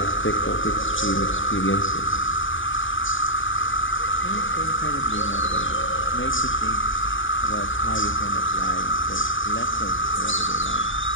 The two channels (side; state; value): right; late; 0.57 ms